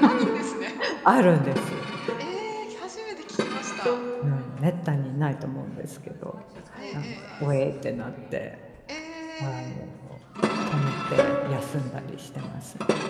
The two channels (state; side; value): identical; both; correlation 1.00